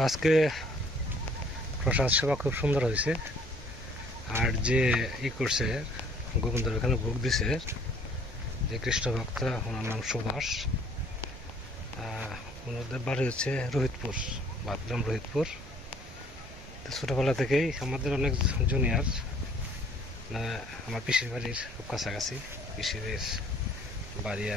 আজকে প্রসাদ সেবা খুব সুন্দর হয়েছে। আর যে করছে গোবিন্দর এখানে ভোগ দিছে যে কৃষ্ণ ভক্ত, ওনার নাম সুভাষ। ওনাদের বাড়ি হচ্ছে রোহিতপুর, বাদগ্রাম রোহিতপুর। তো ছোটোবেলা থেকেই আমাদের অনেক জুনিয়র, আমার পিসির বাড়ির খুব কাছাকাছি, পিসির বাড়ি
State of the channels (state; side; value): normal; both; correlation 0.58